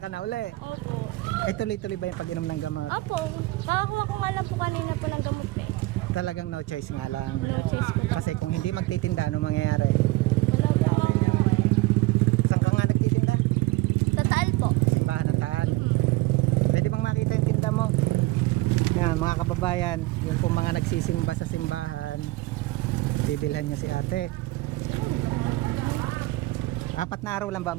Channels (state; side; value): quieter; left; 19.8 dB